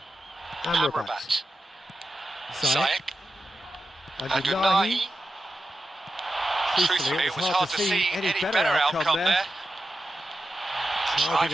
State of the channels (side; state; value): both; normal; correlation 0.91